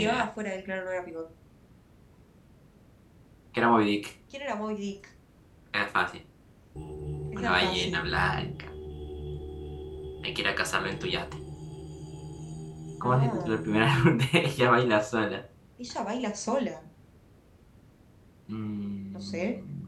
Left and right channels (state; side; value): identical; both; correlation 1.00